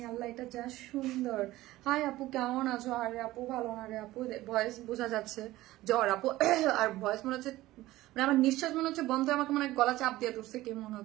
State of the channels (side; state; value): left; quieter; 16.8 dB